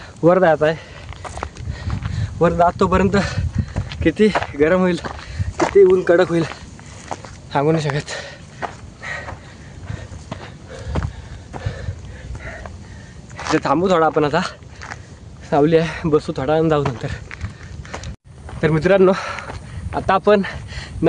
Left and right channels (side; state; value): both; identical; correlation 1.00